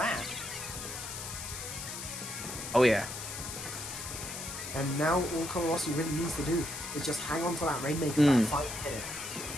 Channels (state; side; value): noise; left; hiss, 7 dB below the sound